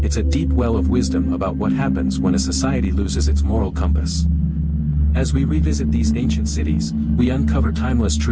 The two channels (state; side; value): identical; both; correlation 1.00